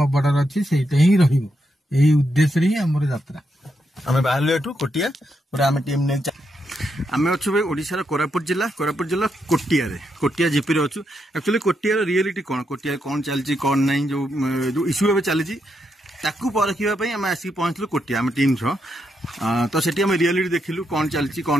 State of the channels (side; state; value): both; normal; correlation 0.81